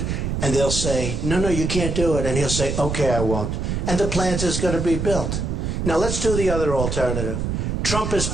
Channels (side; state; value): right; noise; rumble, 2 dB below the sound